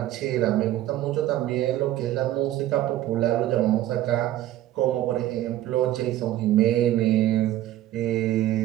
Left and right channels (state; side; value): quieter; left; 13.7 dB